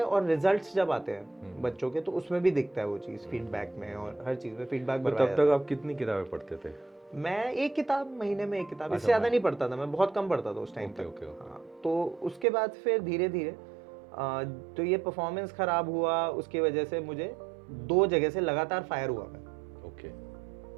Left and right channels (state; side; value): drops out; left; at 12.5 s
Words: और रिजल्ट्स जब आते हैं बच्चों के तो उसमें भी दिखता है वो चीज़, फीडबैक में और हर चीज़ में फीडबैक भरवाया जाता है। तब तक आप कितनी किताबें पढ़ते थे? मैं एक किताब महीने में, एक किताब, इससे ज़्यादा नहीं पढ़ता था मैं, बहुत कम पढ़ता था उस टाइम तक। हाँ, तो उसके बाद फिर धीरे धीरे तो ये परफॉर्मेंस ख़राब हुआ, उसकी वजह से मुझे 2 जगह से लगातार फायर हुआ मैं,